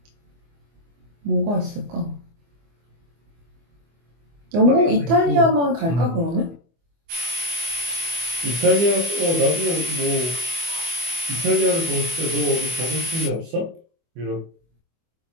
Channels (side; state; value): left; late; 24 ms